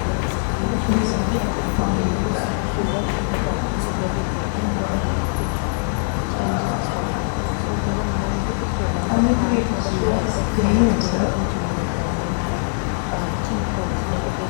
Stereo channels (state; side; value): silent; right; digital silence